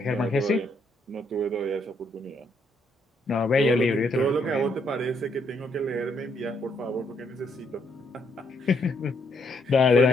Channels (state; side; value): normal; both; correlation 0.73